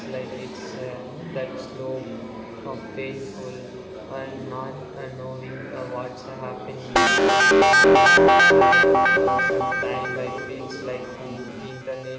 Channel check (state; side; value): identical; both; correlation 1.00